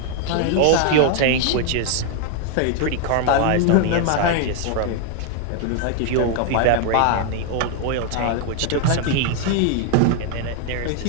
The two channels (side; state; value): both; different; correlation 0.00